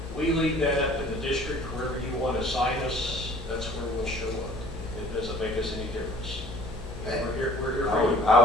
we leave that up to the district. Wherever you want to assign us, that's where we'll show up. It doesn't make us any difference. We're here for you. I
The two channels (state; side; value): normal; both; correlation 0.51